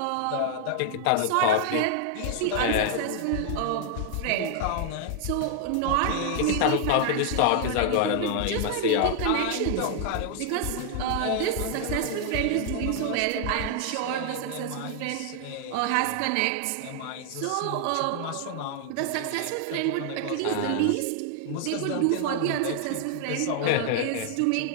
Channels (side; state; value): both; different; correlation 0.00